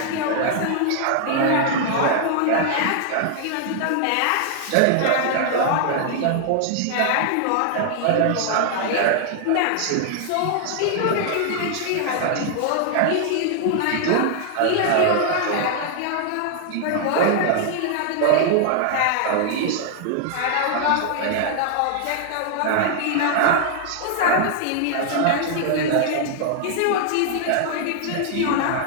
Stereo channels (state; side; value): different; both; correlation 0.00